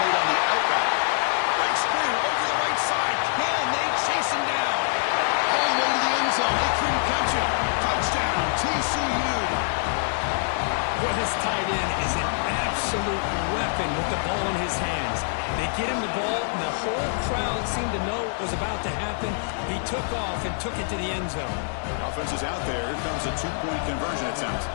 made on the outback. Breaks through over the right side. Can they chase him down? All the way to the end zone. They couldn't catch him. Touchdown, TCU. Well, this tight end is an absolute weapon with the ball in his hands. They get him the ball, and the whole crowd seemed to know what was about to happen. He took off and took it to the end zone. The offense is out there. Here comes a two-point conversion attempt.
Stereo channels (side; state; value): right; silent; 59 dB below the other